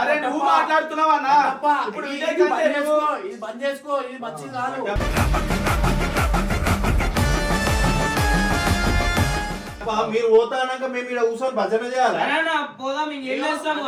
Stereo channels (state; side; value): identical; both; correlation 1.00